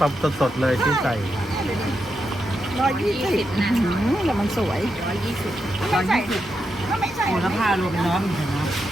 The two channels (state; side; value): normal; both; correlation 0.85